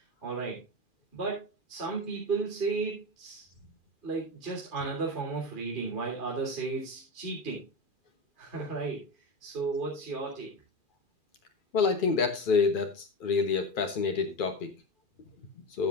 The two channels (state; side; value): late; right; 2.4 ms